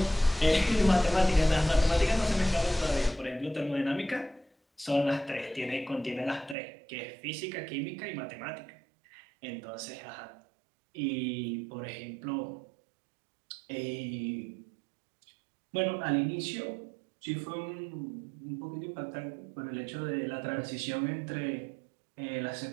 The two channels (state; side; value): drops out; left; at 6.6 s